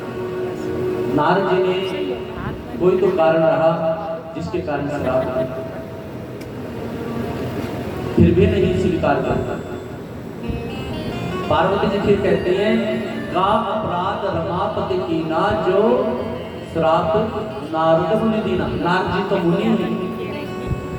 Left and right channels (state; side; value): identical; both; correlation 1.00